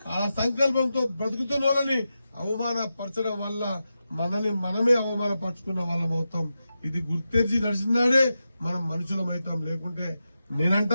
ఆ సంకల్పంతో బ్రతుకుతున్న వాళ్ళని అవమానపరచడం వల్ల మనమే అవమానపరుచుకున్న వాళ్ళం అవుతాం. ఇది గుర్తెరిచి నడిచినాడే మనం మనుషులమవుతాం. లేకుంటే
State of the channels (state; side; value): inverted; both; correlation -0.90